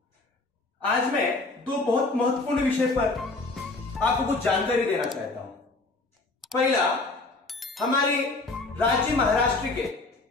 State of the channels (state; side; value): quieter; right; 3.4 dB